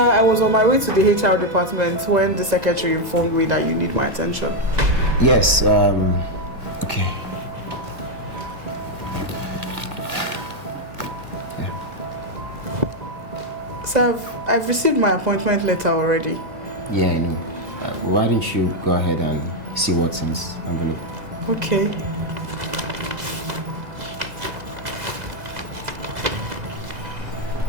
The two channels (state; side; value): late; left; 1.9 ms